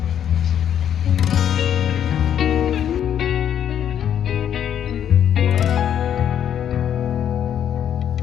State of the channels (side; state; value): right; quieter; 9.5 dB